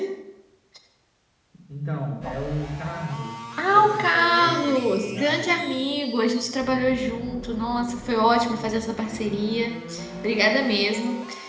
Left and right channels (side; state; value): both; identical; correlation 1.00